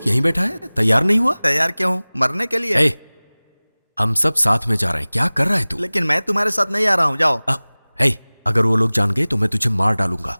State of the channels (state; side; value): inverted; both; correlation -1.00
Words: यहीं बैठा है, तैयार नहीं हुआ? तैयार क्यों हूँ? मरने के लिए। ए, हम सब साथ में जा रहे हैं, क्या कर रहा है तू? लेकिन मैं तुम्हारे साथ नहीं आ रहा हूँ, जाओ। अगर वो लोग जान गए तो मैं तुझे मार डालूंगा।